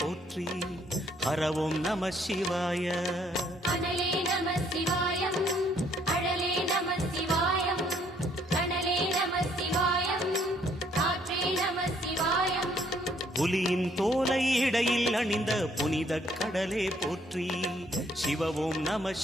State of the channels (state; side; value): normal; both; correlation 0.66